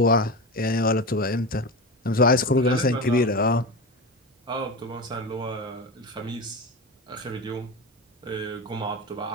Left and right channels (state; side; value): normal; both; correlation 0.23